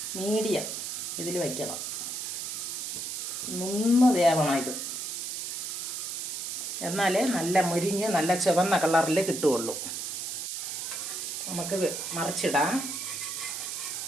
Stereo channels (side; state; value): right; noise; hiss, 4 dB below the sound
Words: മീഡിയം ഇതിൽ വയ്ക്കണം. നിന്ന് വേവണം ഇത്, എന്നാലേ നല്ല മുരിഞ്ഞ് നല്ല ചുവന്ന കളറിൽ കിട്ടുകയുള്ളൂ. നമുക്ക് മറിച്ചിടാം.